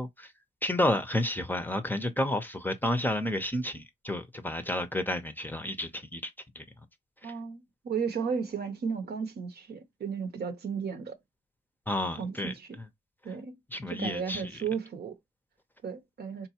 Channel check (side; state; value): both; normal; correlation 0.63